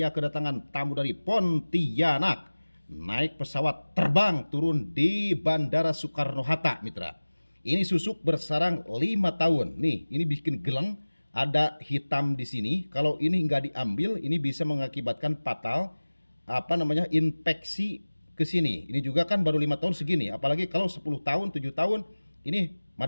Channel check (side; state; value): both; inverted; correlation -1.00